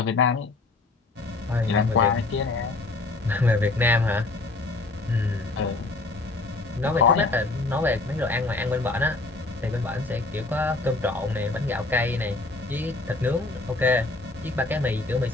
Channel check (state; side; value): quieter; right; 3.3 dB